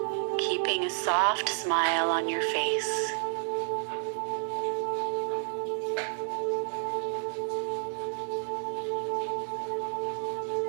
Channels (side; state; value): left; silent; digital silence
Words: keeping a soft smile on your face.